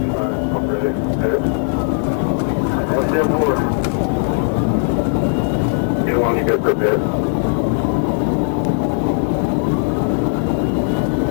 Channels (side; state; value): right; silent; 62 dB below the other